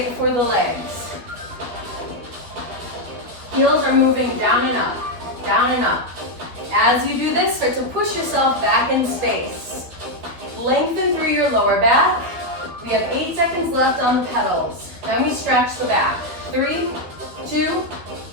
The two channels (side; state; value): left; late; 12 ms